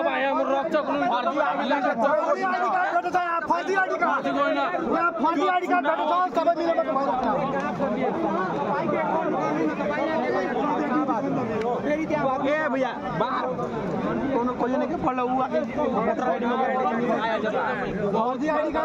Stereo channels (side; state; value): both; identical; correlation 1.00